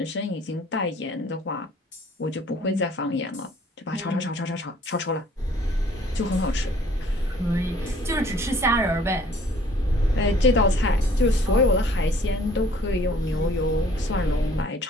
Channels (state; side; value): normal; both; correlation 0.57